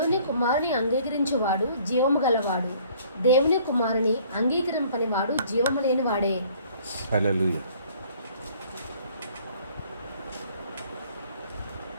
కుమారుని అంగీకరించువాడు జీవము గలవాడు, దేవుని కుమారుని అంగీకరింపని వాడు జీవము లేని వాడే. హల్లెలూయా.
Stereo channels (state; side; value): inverted; both; correlation -0.57